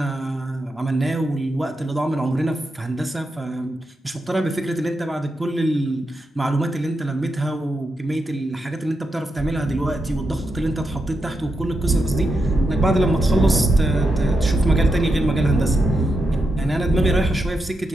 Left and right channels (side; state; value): both; normal; correlation 0.86